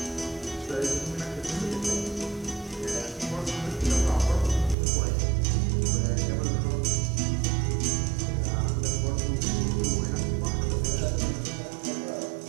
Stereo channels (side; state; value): left; drops out; at 4.8 s